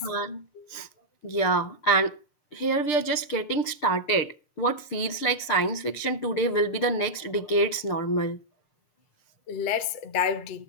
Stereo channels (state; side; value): late; right; 6.7 ms